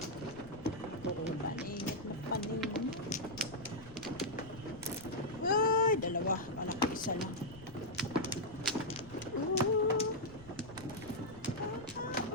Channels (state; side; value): noise; left; rumble, 18 dB below the sound